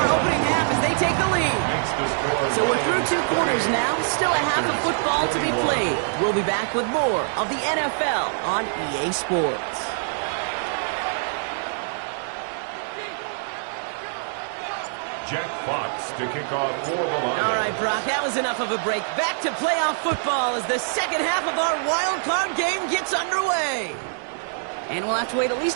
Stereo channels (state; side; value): silent; left; 62 dB below the other